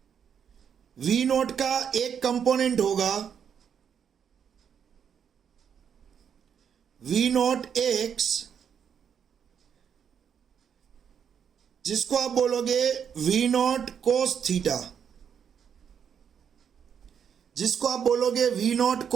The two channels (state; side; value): quieter; left; 7.8 dB